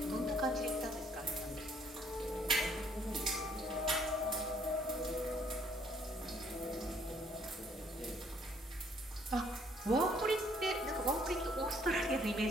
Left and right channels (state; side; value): normal; both; correlation 0.64